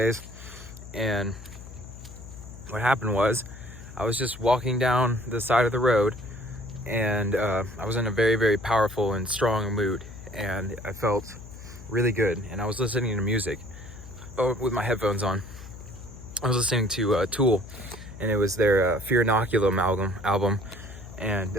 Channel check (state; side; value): noise; left; hum, 15 dB below the sound